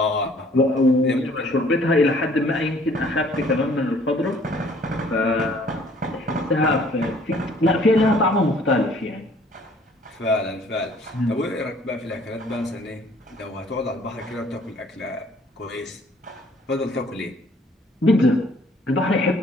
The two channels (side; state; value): both; normal; correlation 0.58